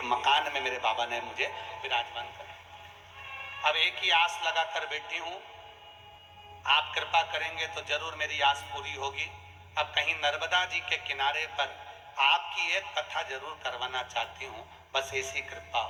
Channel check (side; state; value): both; identical; correlation 1.00